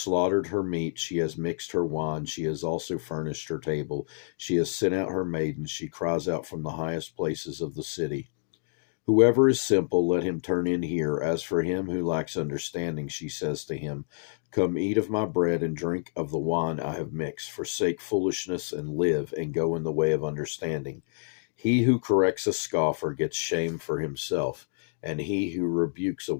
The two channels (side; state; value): right; silent; digital silence